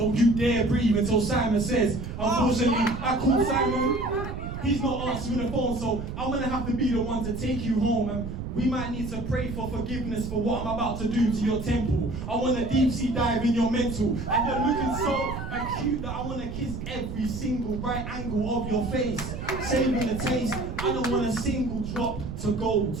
you dare breathe until Simon says. Unfortunately, I called Simon. He's not answering the phone, so I'm gonna have to be the one to take you home. And we might need to pray for forgiveness for what I'm about to do to your temple. I want to deep sea dive in your mental. And you're looking so acute that I want to kiss every single right angle of your face. Saving the taste. I don't want a single drop to go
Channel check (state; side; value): noise; right; rumble, 7 dB below the sound